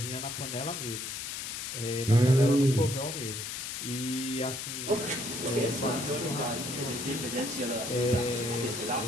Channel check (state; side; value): noise; left; hiss, 5 dB below the sound